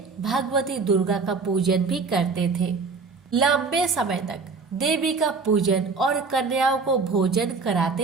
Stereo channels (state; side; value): quieter; left; 4.5 dB